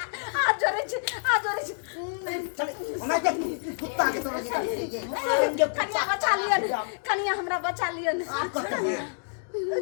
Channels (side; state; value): right; silent; digital silence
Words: आज जोरे चले मैं के कुत्ता के तरह ये मारेंगे कन्या बचा लिया कन्या हमरा बचा लिया आपको क्या है